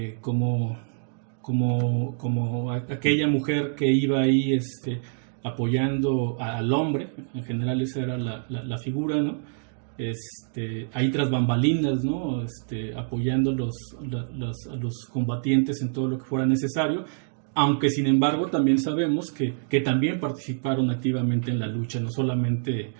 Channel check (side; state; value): left; silent; digital silence